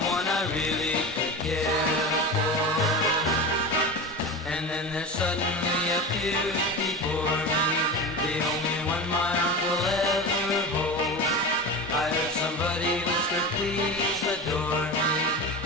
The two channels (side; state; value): both; normal; correlation 0.26